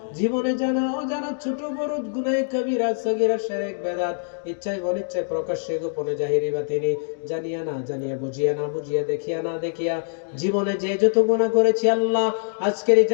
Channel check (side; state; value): right; silent; digital silence